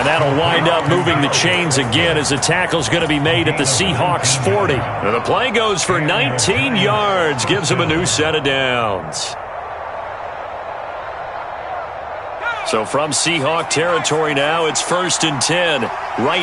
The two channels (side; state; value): both; identical; correlation 1.00